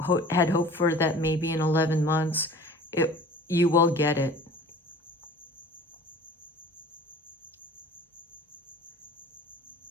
had hoped for, that maybe in 11 months, you will get it.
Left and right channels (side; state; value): both; normal; correlation 0.44